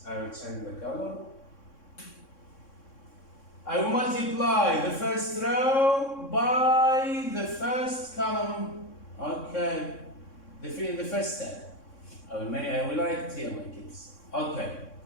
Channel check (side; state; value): right; late; 3.6 ms